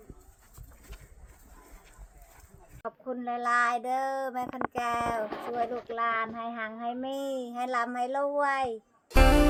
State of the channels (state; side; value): identical; both; correlation 1.00